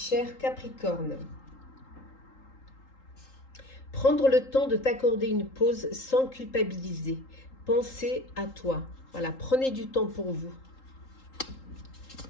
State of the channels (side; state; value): right; late; 3.8 ms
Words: Capricorne, prendre le temps de t'accorder une pause sans culpabiliser. Pensez à toi. Voilà, prenez du temps pour vous.